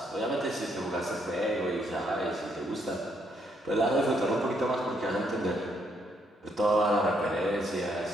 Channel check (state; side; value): normal; both; correlation 0.73